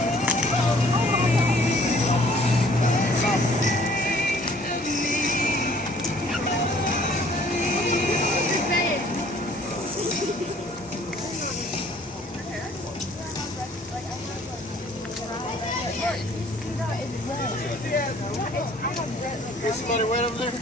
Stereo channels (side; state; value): both; normal; correlation 0.57